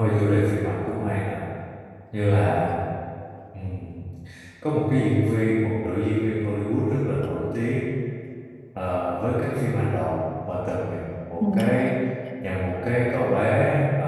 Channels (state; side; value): identical; both; correlation 1.00